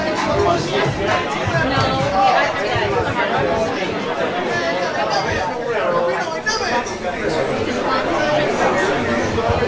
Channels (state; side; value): identical; both; correlation 1.00